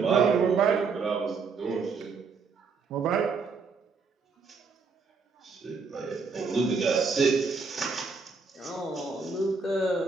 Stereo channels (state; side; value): quieter; left; 4.8 dB